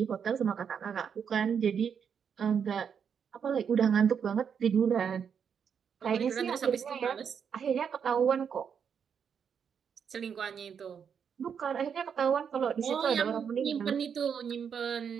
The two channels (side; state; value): left; quieter; 7.3 dB